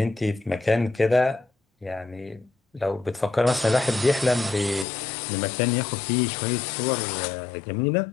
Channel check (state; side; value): drops out; right; at 4.9 s